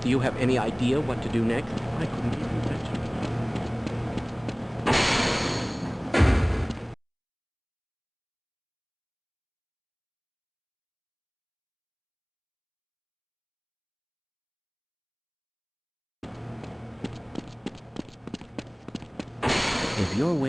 do you have any idea what to do next? I couldn't even touch it. If you're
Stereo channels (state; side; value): identical; both; correlation 1.00